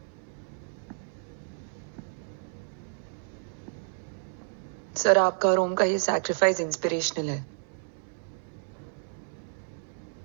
सर, आपका और ओम का ये सैक्रिफाइस इंस्पिरेशनल है,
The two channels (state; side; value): silent; left; 57 dB below the other